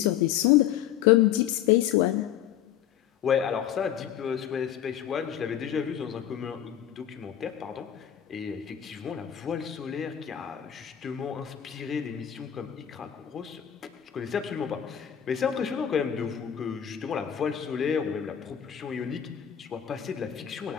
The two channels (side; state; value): right; quieter; 10.2 dB